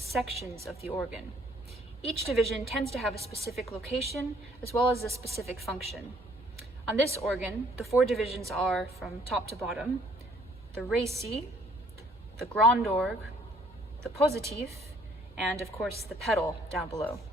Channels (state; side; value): normal; both; correlation 0.62